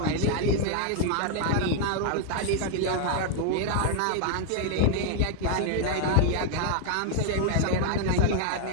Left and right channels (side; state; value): both; different; correlation 0.00